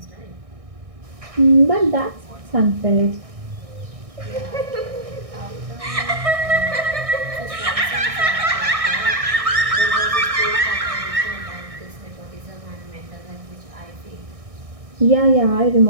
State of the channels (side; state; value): left; late; 1.6 ms